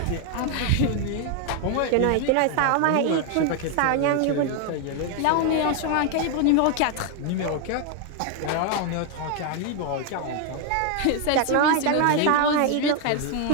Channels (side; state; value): both; different; correlation 0.00